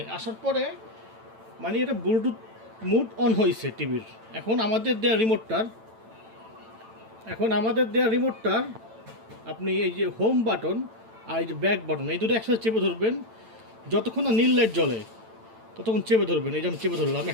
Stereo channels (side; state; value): left; late; 9.0 ms